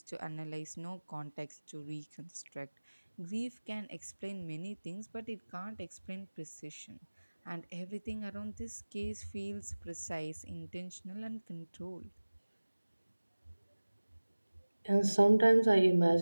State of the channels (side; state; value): both; inverted; correlation -1.00